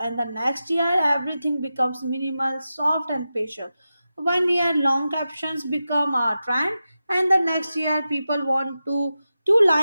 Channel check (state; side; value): inverted; both; correlation -0.92